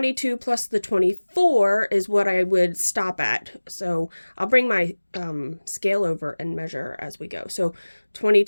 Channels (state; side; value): inverted; both; correlation -1.00